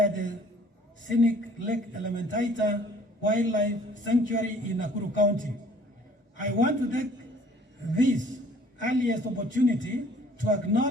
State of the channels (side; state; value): both; normal; correlation 0.55